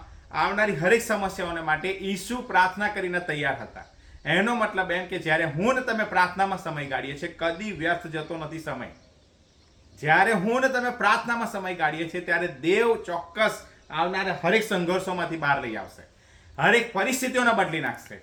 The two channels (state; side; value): identical; both; correlation 1.00